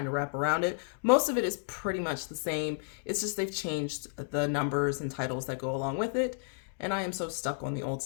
to wrap around it. Most of it is pretty much the same. It's just they've changed the numbers and titles that go along with it. And I am so stuck on the old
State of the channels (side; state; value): right; silent; digital silence